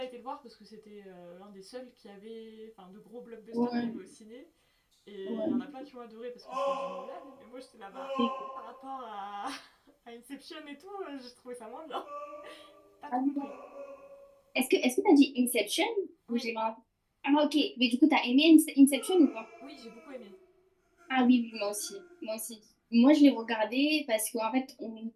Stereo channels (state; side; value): identical; both; correlation 1.00